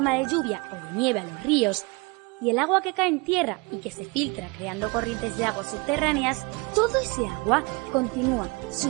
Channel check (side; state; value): left; quieter; 28.3 dB